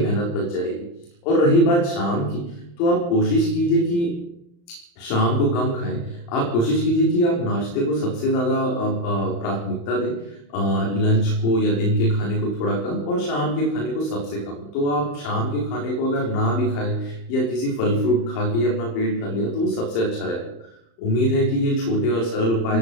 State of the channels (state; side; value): late; right; 35 ms